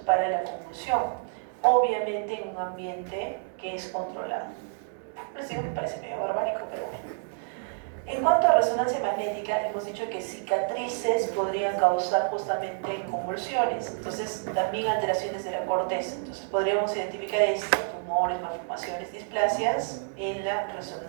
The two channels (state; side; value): silent; left; 59 dB below the other